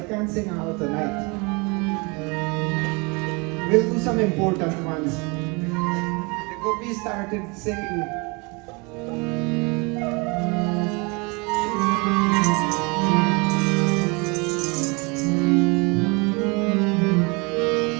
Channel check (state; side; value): quieter; left; 29.1 dB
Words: can't sing out tonight. We'll do some important ones. The Gopis started singing.